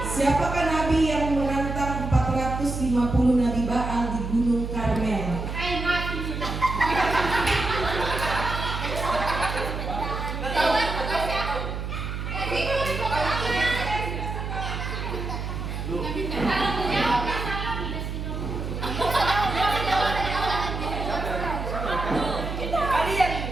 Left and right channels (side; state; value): right; noise; hum, 5 dB below the sound